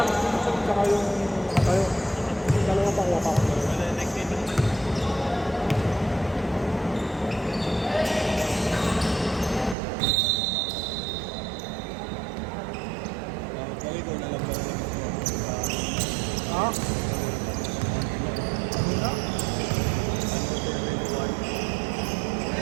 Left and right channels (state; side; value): drops out; left; at 9.8 s